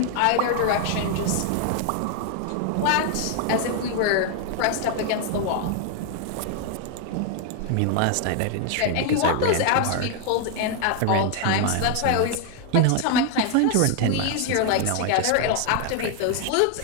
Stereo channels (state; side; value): different; both; correlation 0.00